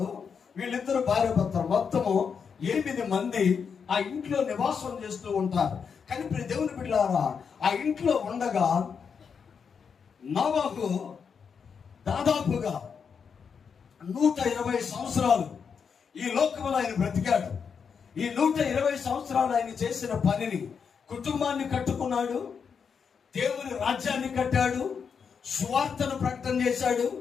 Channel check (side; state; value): right; quieter; 6.4 dB